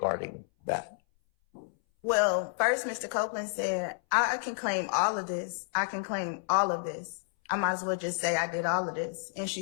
that? Well, first, Mr. Copeland said, I can claim all of this. I can claim all of this. I might as well just say I did all of this. And she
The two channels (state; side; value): silent; right; 57 dB below the other